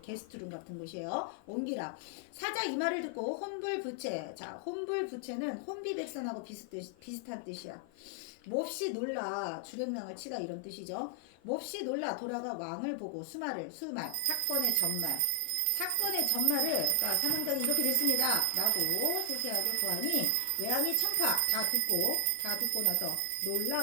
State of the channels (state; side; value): different; both; correlation 0.00